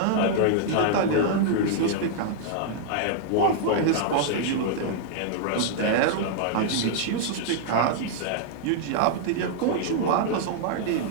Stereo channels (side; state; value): both; different; correlation -0.01